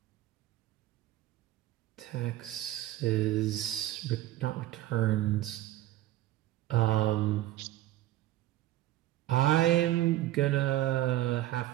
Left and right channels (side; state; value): left; quieter; 14.8 dB